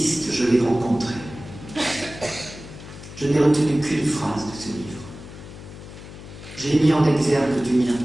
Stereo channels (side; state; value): left; noise; hum, 15 dB below the sound